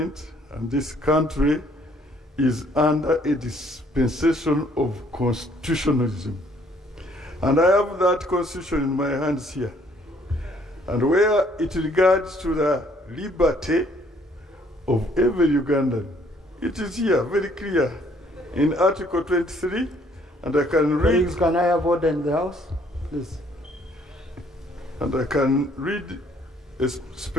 and this country is under a dispensation of constitutionalism. And I have that constitution in my hands here. And where it regards to the liberty of every Ugandan, it is here, very clear, in Article 23, and I can read... Please, can I have order in the House? Please. And I can read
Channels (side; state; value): both; normal; correlation 0.63